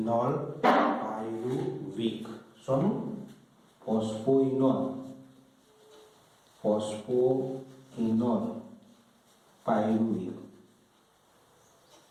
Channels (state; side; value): identical; both; correlation 1.00